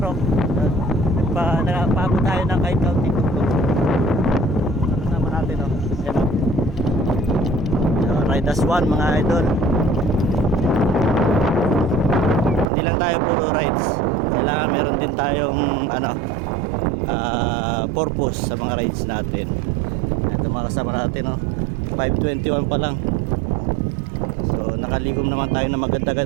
Nagpaabot tayo ng kahit kaunting tuktok. Kasama natin o. Ayan o. Ride as one mga idol. Hindi lang tayo puro rides. Kailangan meron din tayong purpose sa mga rides natin. Ito mga kasama natin o. 5:21 pa lang. So nakaligom naman tayo na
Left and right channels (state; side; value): drops out; left; at 12.7 s